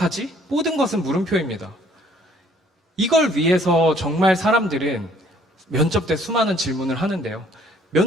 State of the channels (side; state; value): both; normal; correlation 0.60